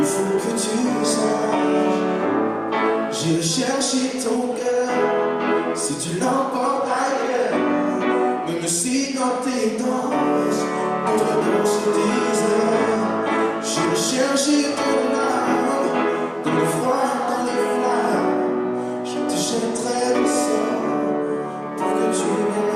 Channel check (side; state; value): both; identical; correlation 1.00